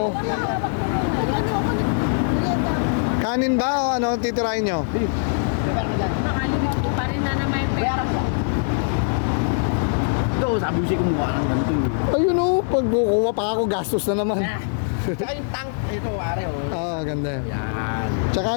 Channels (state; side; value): silent; right; digital silence